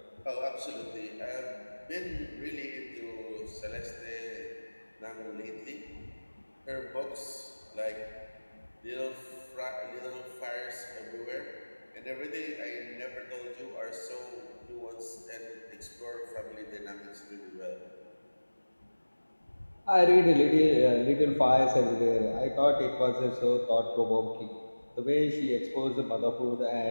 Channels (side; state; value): both; inverted; correlation -1.00